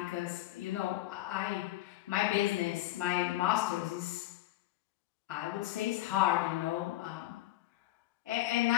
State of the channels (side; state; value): right; quieter; 16.1 dB